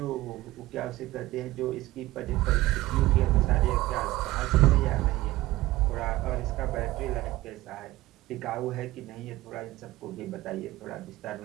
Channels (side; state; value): left; quieter; 17.6 dB